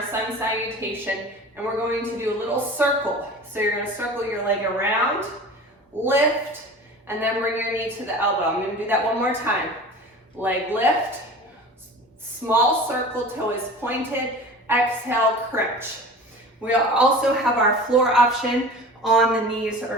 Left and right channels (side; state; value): both; normal; correlation 0.38